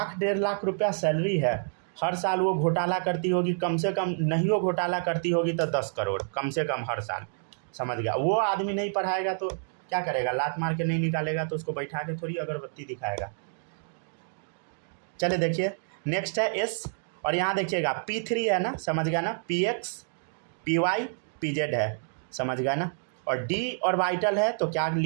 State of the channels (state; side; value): silent; left; digital silence